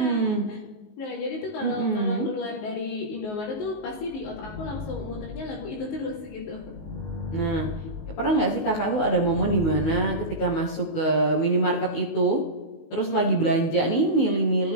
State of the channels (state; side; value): late; right; 19 ms